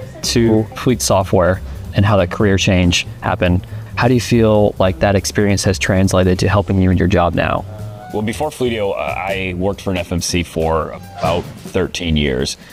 to fleet software and how that career change happened. How do you feel like that experience has translated to helping you in your job now? Well, before Fleetio, I worked for an FMC for about 13 years.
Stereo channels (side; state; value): both; identical; correlation 1.00